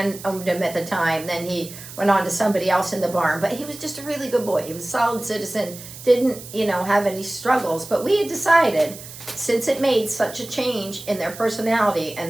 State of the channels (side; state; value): right; noise; hiss, 14 dB below the sound